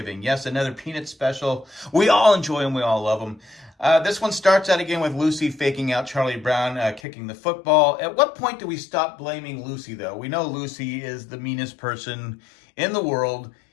Yes, another Peanut special. We all enjoy them. We all love them. This one starts out again with Lucy faking out Charlie Brown kicking the football. At what point do we stop blaming Lucy, though? We know Lucy is the meanest person in the world.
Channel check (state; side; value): drops out; right; at 7.0 s